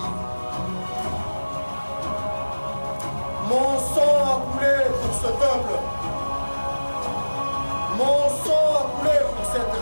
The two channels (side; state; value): both; inverted; correlation -1.00